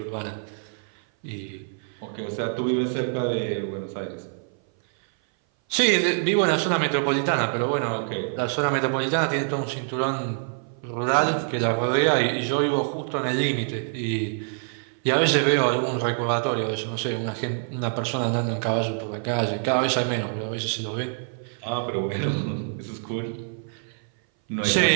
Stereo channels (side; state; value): left; silent; 58 dB below the other